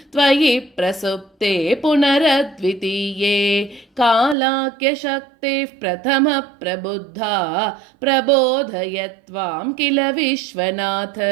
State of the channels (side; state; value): left; drops out; at 4.4 s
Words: त्वयि प्रसुप्ते पुनरद्वितीये कालाख्यशक्तिः प्रथमः प्रबुद्धा प्रबोधयत्वां किल विश्वनाथ